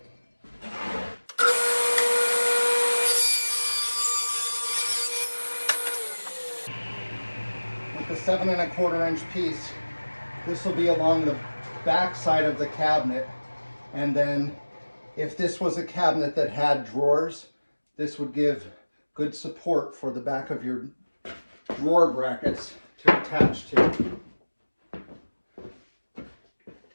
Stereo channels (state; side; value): inverted; both; correlation -1.00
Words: With the 7.25 inch piece, this will be along the back side of the cabinet. And then if this was a cabinet that had drawers, this would give good support for the back of your drawer brackets to attach to.